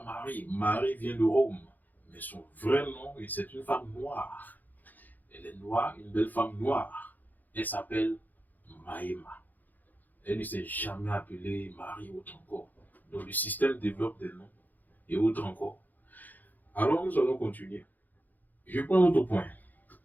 Marie. Marie vient de Rome. Mais son vrai nom, c'est une femme noire. Elle est noire, une belle femme noire. Elle s'appelle Maïma. Elle ne s'est jamais appelée Marie autre encore. Donc le système développe des noms et autres encore. Alors nous allons continuer. Je prends un autre point.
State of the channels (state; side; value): late; right; 0.084 ms